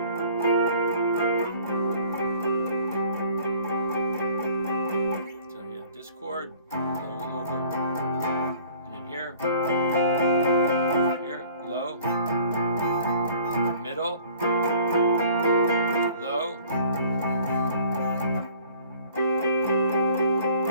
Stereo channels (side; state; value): both; inverted; correlation -0.52